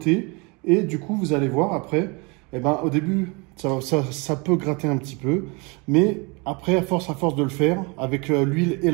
et du coup, vous allez voir après, au début, ça peut gratter un petit peu, mais après, à force de le faire, avec l'huile et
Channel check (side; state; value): left; quieter; 29.3 dB